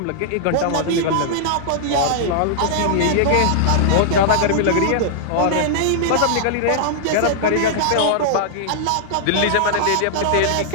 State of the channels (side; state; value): both; different; correlation -0.01